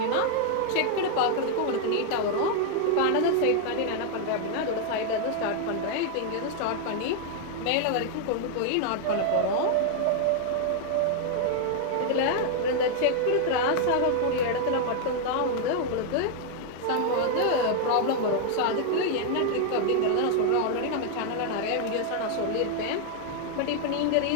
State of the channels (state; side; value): different; both; correlation 0.00